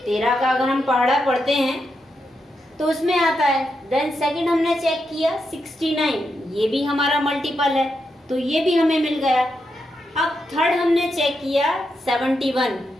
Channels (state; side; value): normal; both; correlation 0.84